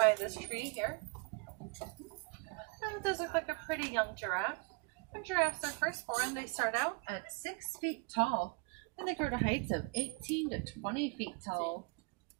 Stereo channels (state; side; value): quieter; left; 31.2 dB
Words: this tree here. And it does look like a pretty young giraffe. When giraffes are first born, they start out at 6 feet tall, and they grow to heights of 18 to 20 feet tall.